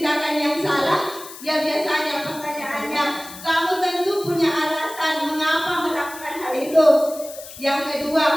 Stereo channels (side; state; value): left; noise; hiss, 15 dB below the sound